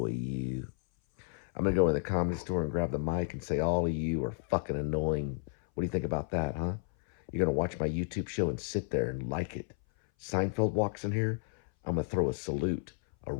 you. I'm going to go in the comedy store and grab the mic and say, all of you are fucking annoying. What do you think about that, huh? You're going to watch my YouTube show and sit there and like it. Seinfeld walks in here, I'm going to throw a salute, a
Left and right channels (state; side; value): silent; right; 56 dB below the other